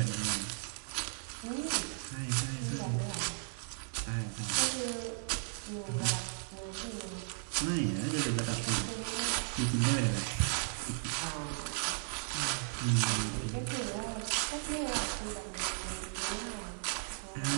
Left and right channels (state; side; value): silent; left; 54 dB below the other